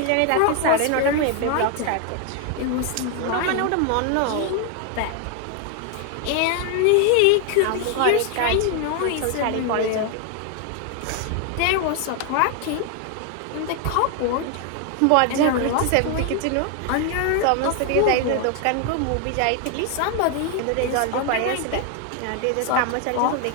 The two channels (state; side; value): different; both; correlation 0.01